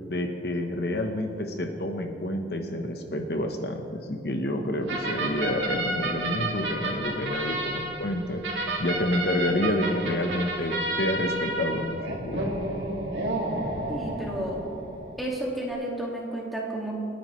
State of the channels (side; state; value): both; normal; correlation 0.39